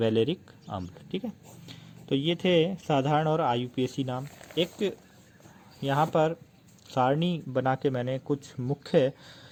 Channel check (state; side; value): identical; both; correlation 1.00